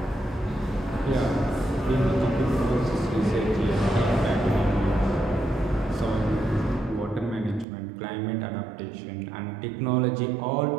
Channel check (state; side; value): drops out; left; at 7.7 s